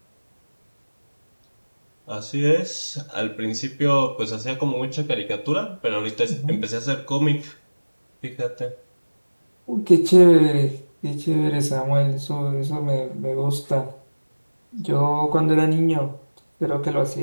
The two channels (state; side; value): inverted; both; correlation -1.00